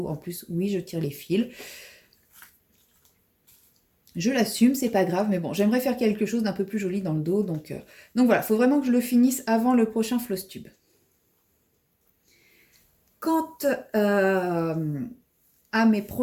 En plus, oui, je tire les fils. Je l'assume, c'est pas grave, mais bon, j'aimerais faire quelque chose d'un peu plus joli dans le dos, donc voilà, il faut vraiment que je le finisse avant le prochain floss tube. Quant à mes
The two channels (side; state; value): both; identical; correlation 1.00